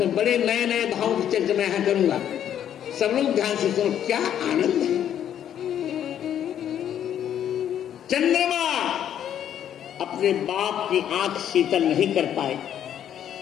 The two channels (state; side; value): quieter; right; 10.0 dB